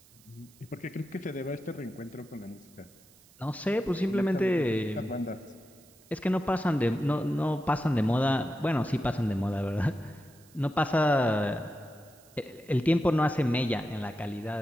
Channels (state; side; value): noise; right; hiss, 27 dB below the sound